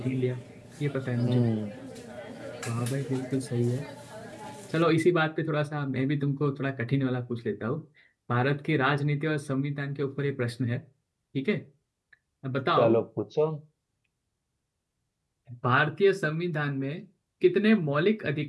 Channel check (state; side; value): identical; both; correlation 1.00